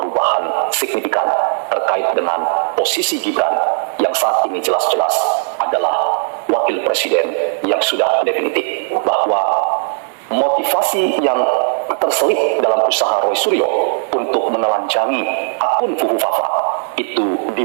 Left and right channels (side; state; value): left; silent; 65 dB below the other